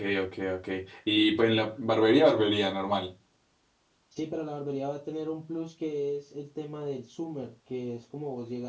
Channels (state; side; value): identical; both; correlation 1.00